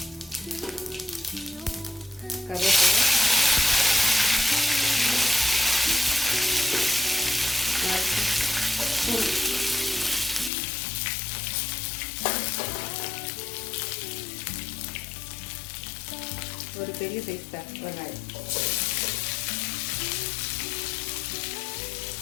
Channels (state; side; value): drops out; right; at 10.5 s